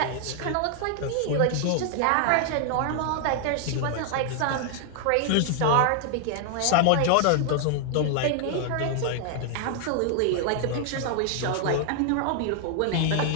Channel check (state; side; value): different; both; correlation 0.00